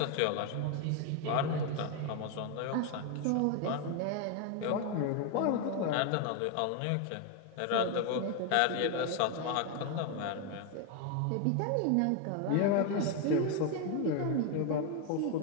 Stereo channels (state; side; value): different; both; correlation 0.01